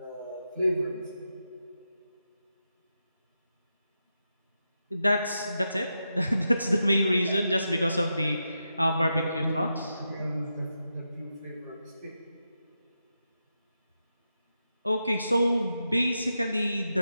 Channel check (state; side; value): inverted; both; correlation -0.87